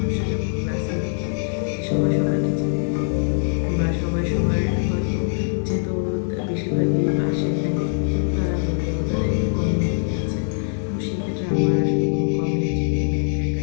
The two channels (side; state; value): right; silent; digital silence